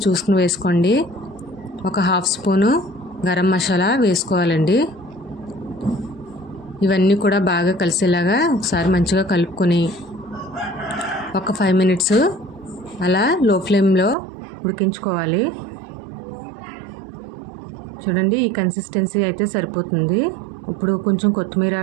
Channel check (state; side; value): drops out; left; at 14.2 s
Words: చూసుకుని వేసుకోండి. 1/2 స్పూను గరం మసాలా వేసుకోవాలండి. ఇవన్నీ కూడా బాగా కలిసేలాగా ఒకసారి మంచిగా కలుపుకొని ఒక 5 మినిట్స్ అలా లో ఫ్లేమ్లో ఉడికించుకోవాలి. చూడండి, ఈ కన్సిస్టెన్సీ అయితే సరిపోతుంది. ఇప్పుడు కొంచెం కొత్తిమీర